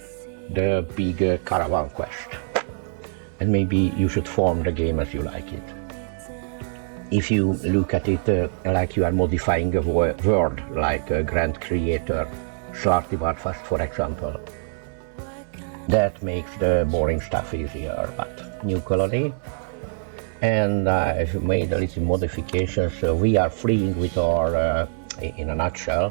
the big caravan quest. And maybe you should form the game as you like it. If you look at it like you are modifying a world, like a grand creator, Svartivarfast for example, that makes the boring stuff easier. But new colony, and I've made a little modification, so we are fleeing with our in a nutshell,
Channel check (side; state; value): left; silent; digital silence